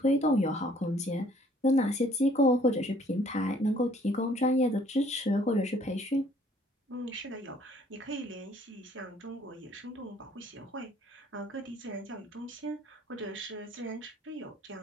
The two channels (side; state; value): both; normal; correlation 0.60